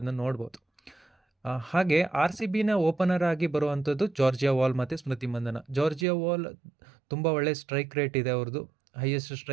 ನೋಡ್ಬೋದು. ಹಾಗೆ RCBನ ಓಪನರ್ ಆಗಿ ಬರುವಂಥದ್ದು ಜಾರ್ಜಿಯಾ ವಾಲ್ ಮತ್ತು ಸ್ಮೃತಿ ಮಂದನ. ಜಾರ್ಜಿಯಾ ವಾಲ್ ತುಂಬ ಒಳ್ಳೆ ಸ್ಟ್ರೈಕ್ ರೇಟ್ ಇದೆ, ಅವ್ರದ್ದು ಹೈಯೆಸ್ಟ್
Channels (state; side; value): drops out; left; at 6.1 s